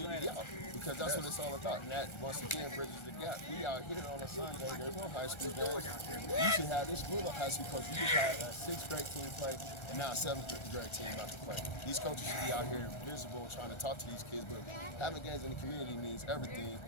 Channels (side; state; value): right; late; 1.4 ms